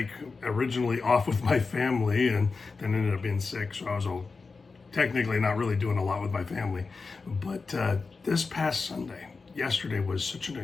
originally off with my family and then ended up being sick. So I was technically not really doing a lot with my family. But this past Sunday, yesterday, was such an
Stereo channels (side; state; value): right; quieter; 4.4 dB